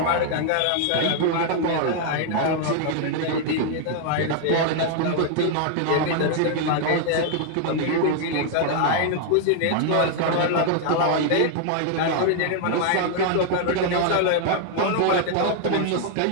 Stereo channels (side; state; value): both; different; correlation 0.00